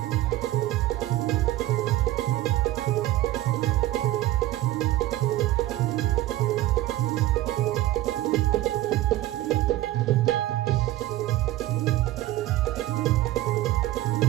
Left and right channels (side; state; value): left; quieter; 15.5 dB